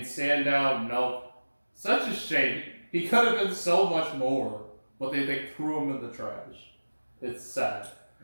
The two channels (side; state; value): both; inverted; correlation -1.00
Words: Sandow, nope. Such a shame. He could have been so much more, but they threw him in the trash. It's sad.